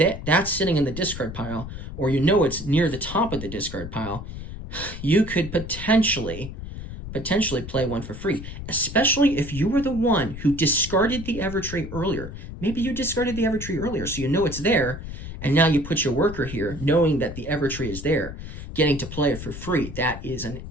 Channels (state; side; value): noise; left; rumble, 10 dB below the sound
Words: that's sitting in the discard pile, or you know it's near the top of the discard pile, you could potentially play 1 for free, especially if you were the one who discarded the Evertree earlier. Maybe you discarded the Evertree earlier, so you know it's there, and now you put your worker here, knowing that the Evertree is there, getting to play it for free. That is an